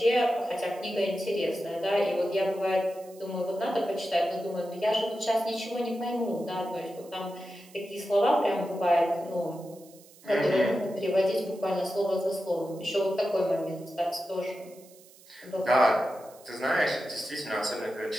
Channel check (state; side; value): noise; right; hiss, 24 dB below the sound